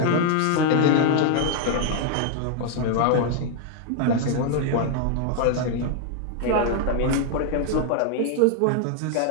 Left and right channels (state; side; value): different; both; correlation 0.00